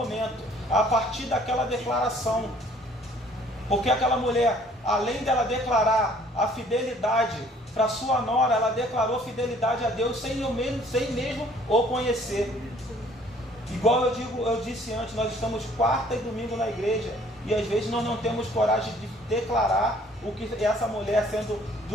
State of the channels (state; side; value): normal; both; correlation 0.57